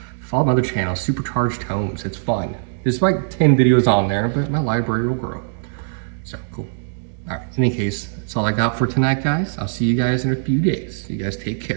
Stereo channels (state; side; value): silent; left; digital silence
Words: Follow my other channel, Supercharged Homes. It's fun. There's like 10 videos on there, but my library will grow. So cool. All right. In any case, that's all I got for tonight, guys. I'll see you guys in a few days. You guys take